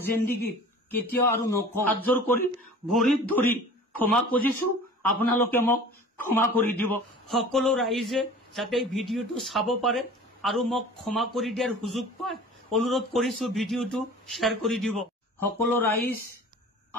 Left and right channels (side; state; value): both; normal; correlation 0.43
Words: জিন্দগীত কেতিয়াও আৰু নকওঁ। হাত জোৰ কৰি ভৰিত ধৰি ক্ষমা খুজিছো, আপোনালোকে মোক ক্ষমা কৰি দিব। সকলো ৰাইজে যাতে ভিডিঅ'টো চাব পাৰে আৰু মোক ক্ষমা কৰি দিয়াৰ সুযোগ পায়, অনুৰোধ কৰিছো ভিডিঅ'টো শ্বেয়াৰ কৰি দিব। সকলো ৰাইজ